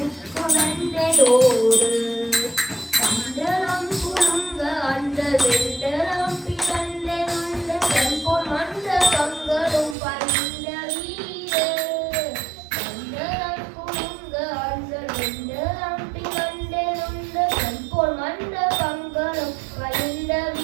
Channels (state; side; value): drops out; left; at 10.0 s